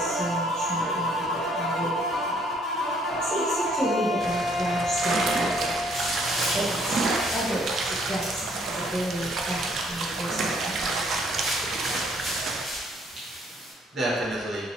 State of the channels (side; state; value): both; normal; correlation 0.64